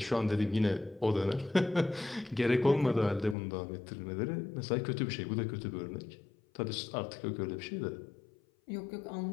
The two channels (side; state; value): right; drops out; at 3.4 s